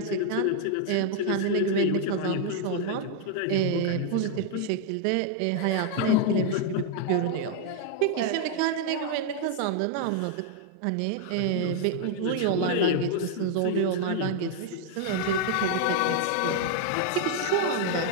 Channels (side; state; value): both; different; correlation 0.00